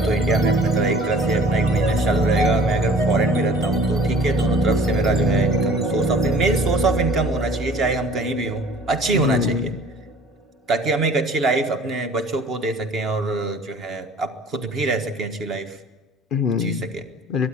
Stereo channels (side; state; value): both; normal; correlation 0.49